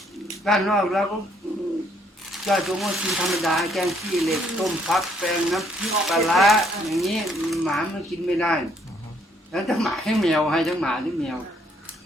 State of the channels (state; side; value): normal; both; correlation 0.68